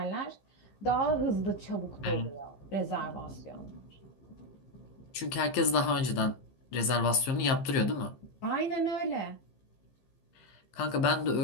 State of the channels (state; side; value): late; right; 15 ms